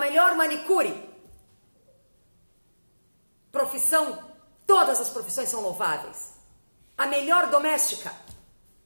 manicure. Profissão, todas as profissões são louváveis. A melhor doméstica,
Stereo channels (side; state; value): both; inverted; correlation -1.00